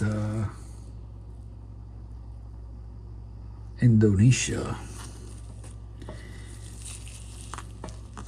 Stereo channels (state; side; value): identical; both; correlation 1.00